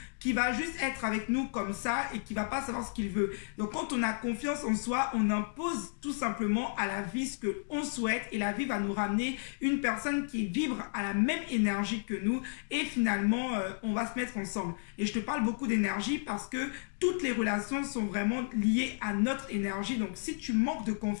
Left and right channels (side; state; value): right; silent; digital silence